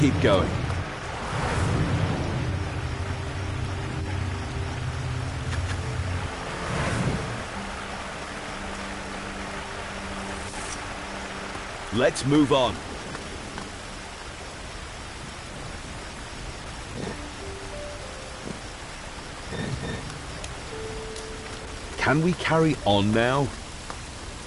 going. Let's move on. Can we carry on now?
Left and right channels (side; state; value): both; identical; correlation 1.00